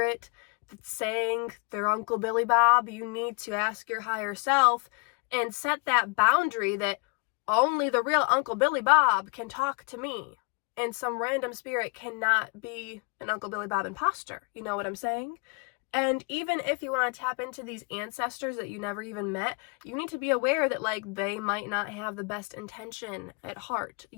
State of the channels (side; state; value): right; quieter; 33.9 dB